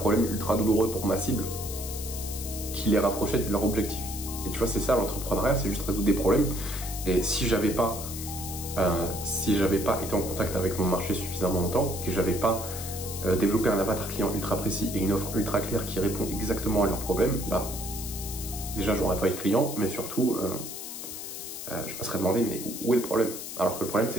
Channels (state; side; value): noise; left; hiss, 8 dB below the sound